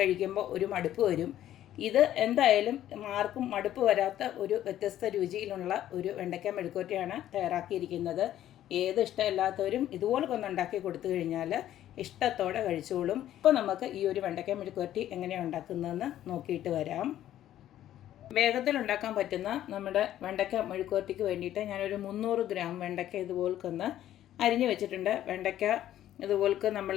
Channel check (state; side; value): quieter; right; 12.3 dB